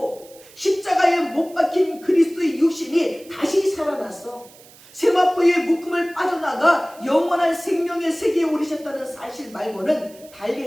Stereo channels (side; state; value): right; noise; hiss, 23 dB below the sound